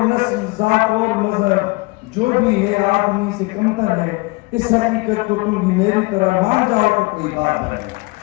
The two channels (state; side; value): quieter; right; 24.9 dB